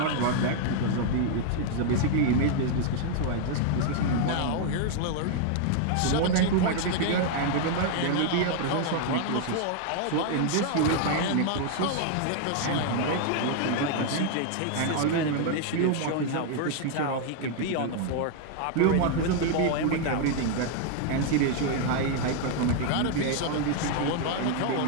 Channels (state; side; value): different; both; correlation 0.00